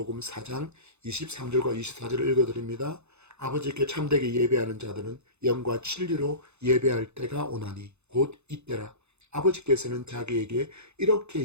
4장 23절과 24절을 읽어드립니다. 아버지께 참되게 예배하는 자들은 영과 진리로 예배할 때가 오나니 곧 이때라. 아버지께서는 자기에게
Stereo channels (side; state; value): left; late; 0.81 ms